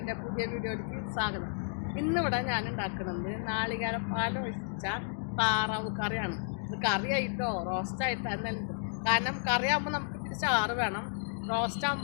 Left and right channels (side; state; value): right; silent; digital silence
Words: പുതിയ വീഡിയോയിലേക്ക് സ്വാഗതം. ഇന്നിവിടെ ഞാൻ ഉണ്ടാക്കുന്നത് നാളികേരപ്പാൽ ഒഴിച്ച താറാവ് കറിയാണ്. ഇത് കറിയായിട്ടോ റോസ്റ്റായിട്ടോ എന്നല്ല. കാരണം കറിയാകുമ്പോൾ നമുക്ക് ഇത്തിരി ചാറ് വേണം,